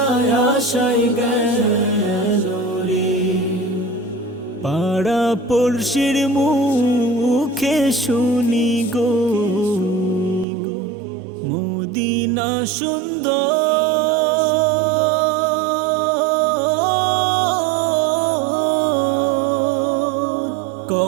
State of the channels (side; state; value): left; drops out; at 10.5 s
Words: আশায় গেল রে। পাড়া পড়শির মুখে শুনি গো মদিনা সুন্দর,